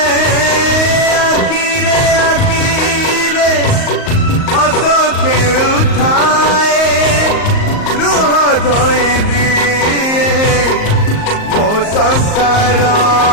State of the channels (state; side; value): late; right; 38 ms